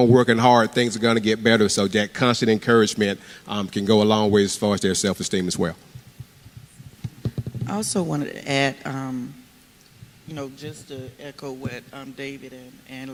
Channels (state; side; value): identical; both; correlation 1.00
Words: working hard, things are going to get better. So that constant encouragement can go a long way as far as their self-esteem as well. I also wanted to add, you know, just to echo what David and